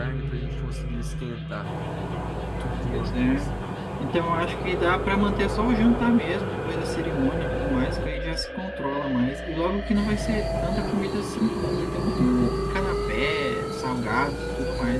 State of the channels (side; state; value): both; identical; correlation 1.00